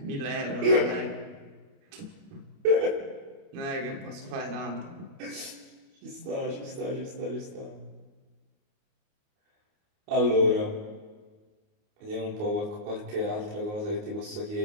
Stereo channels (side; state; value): left; late; 29 ms